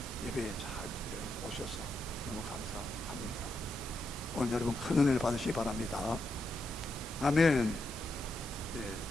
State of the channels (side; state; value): both; normal; correlation 0.83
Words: 예배에 잘 오셔서 너무 감사합니다. 오늘 여러분 큰 은혜를 받으시기 바랍니다. 아멘. 네.